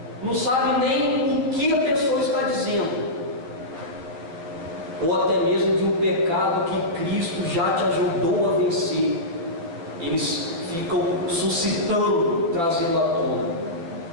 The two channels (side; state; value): left; late; 12 ms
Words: não sabe nem o que a pessoa está dizendo, ou até mesmo de um pecado que Cristo já te ajudou a vencer, eles ficam suscitando, trazendo à tona.